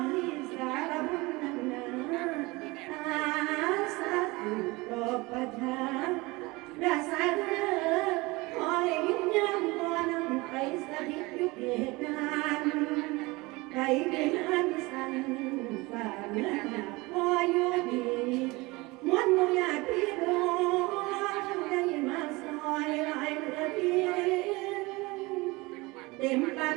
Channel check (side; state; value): left; quieter; 23.3 dB